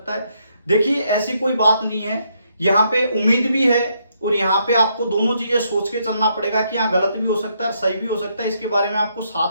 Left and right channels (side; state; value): both; inverted; correlation -0.75